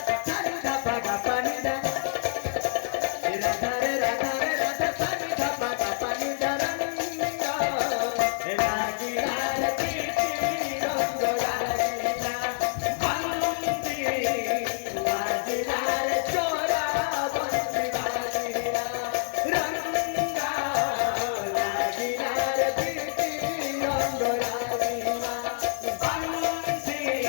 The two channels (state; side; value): silent; right; 60 dB below the other